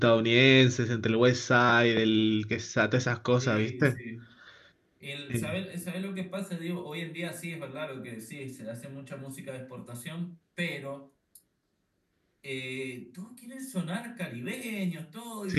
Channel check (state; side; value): identical; both; correlation 1.00